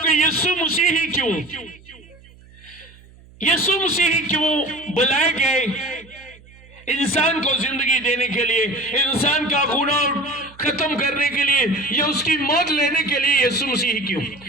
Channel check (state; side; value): noise; right; hum, 24 dB below the sound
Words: کہ یسوع مسیح ہی کیوں, یسوع مسیح ہی کیوں بلائے گئے انسان کو زندگی دینے کے لیے, انسان کا گناہ ختم کرنے کے لیے یا اس کی موت لینے کے لیے یسوع مسیح کیوں؟